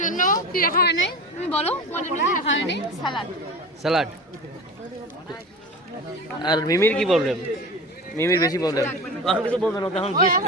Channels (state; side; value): normal; both; correlation 0.32